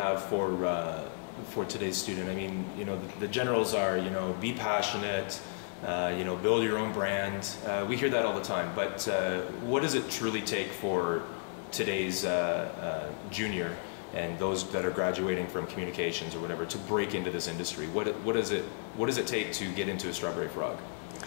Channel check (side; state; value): right; silent; digital silence